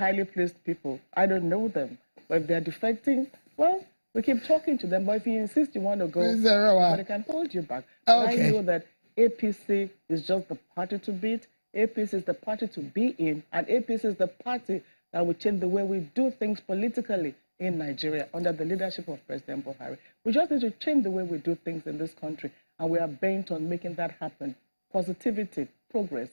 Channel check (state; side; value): inverted; both; correlation -1.00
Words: placed people. I don't know them. But if they're defecting, well, we keep talking to them. But if you insist you want to go, nobody can hold you back. Okay. I know that APC is just the party to beat. APC is the party to be in, and APC is the party that will change the way we do things politically in Nigeria under the leadership of President Buhari. We just need to change the way we do things in this country, and we are bent on making that happen. Positivity, progress,